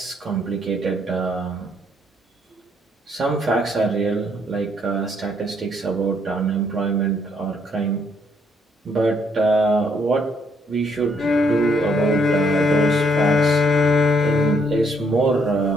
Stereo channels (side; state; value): both; normal; correlation 0.70